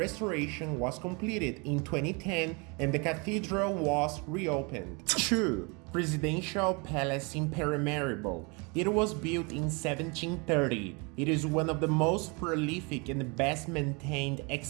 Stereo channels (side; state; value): left; quieter; 30.6 dB